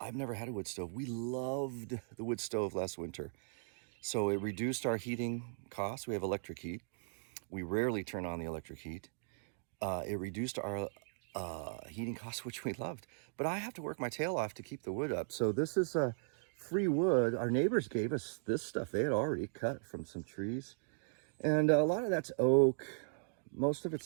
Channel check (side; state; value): left; silent; digital silence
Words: I've never had a wood stove. We loved the wood stove last winter. So it reduced our heating costs. We have electric heat. We rarely turn on the electric heat. It reduced our heating costs, which we loved. But I have to work my tail off to keep the wood up. So this is free wood. Our neighbors gave us this stuff. They had already cut from some trees. And a lot of that's oak. Most of